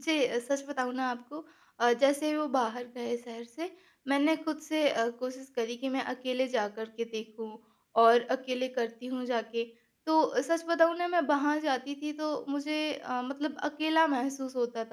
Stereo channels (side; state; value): both; identical; correlation 1.00